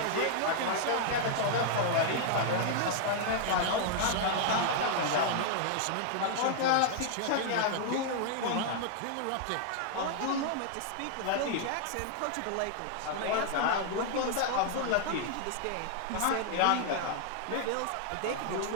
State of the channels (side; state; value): both; different; correlation -0.01